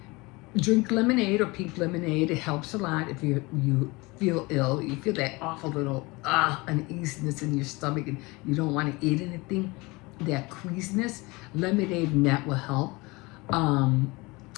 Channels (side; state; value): right; quieter; 24.2 dB